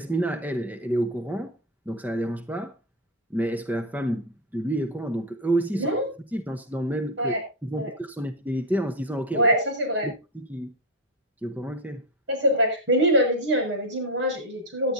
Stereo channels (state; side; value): normal; both; correlation 0.08